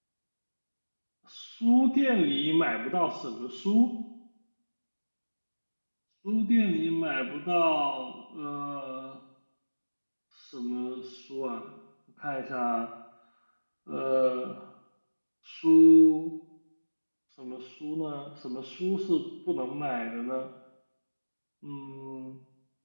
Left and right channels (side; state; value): both; inverted; correlation -1.00